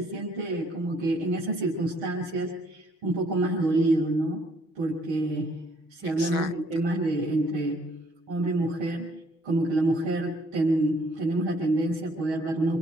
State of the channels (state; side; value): late; left; 6.1 ms